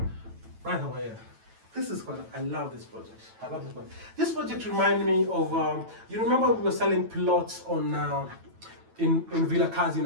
over here. This is what I love this project. I love this project. This project reminds me of, you remember we were selling plots on in Villa Kazi in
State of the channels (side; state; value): left; late; 9.1 ms